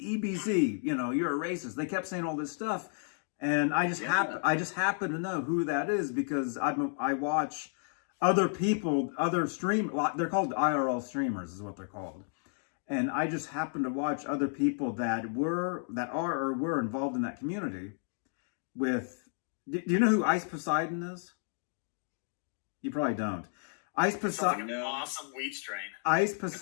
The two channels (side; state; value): right; silent; 56 dB below the other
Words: EBZ, you know, you're a racist. They kept saying all this stuff, and I just happen to know who that is because I watch other people, other stream. They're called IRL streamers, is what they're called. And I just happen to watch other people that are or were involved in that community with. Do you know who Ice Poseidon is? You probably don't. Ice Sounds like Poseidon. an awesome weed strain. Ice